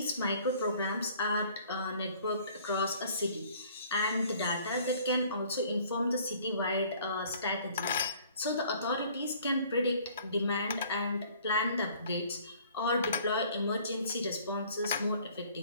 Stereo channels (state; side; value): inverted; both; correlation -0.55